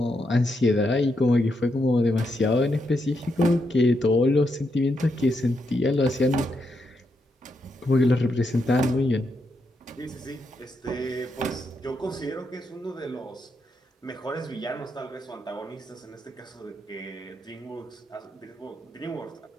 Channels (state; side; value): normal; both; correlation 0.81